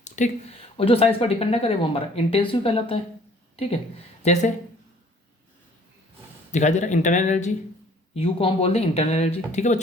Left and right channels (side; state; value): both; normal; correlation 0.55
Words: ठीक, और जो साइज पर डिपेंड ना करे वो हमारा इंटेंसिव कहलाता है। ठीक है, जैसे दिखाई दे रहा है इंटरनल एनर्जी, यू को हम बोल दें इंटरनल एनर्जी। ठीक है